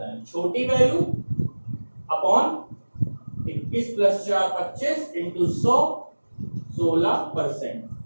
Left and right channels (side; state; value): both; inverted; correlation -1.00